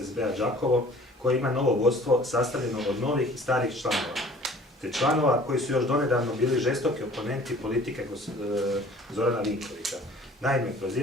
Đakovo, koji ima novo vodstvo sastavljeno od novih i starih članova, te članova koji su još donedavno bili žestoki oponenti politike Zorana Vinkovića. Naime,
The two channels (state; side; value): normal; both; correlation 0.49